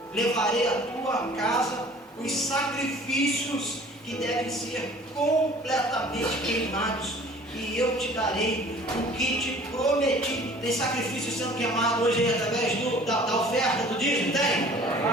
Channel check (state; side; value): normal; both; correlation 0.49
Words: Levarei à tua casa os sacrifícios que devem ser completamente queimados, e eu te darei o que te prometi. Tem sacrifício sendo queimado hoje através da oferta do dízimo? Tem?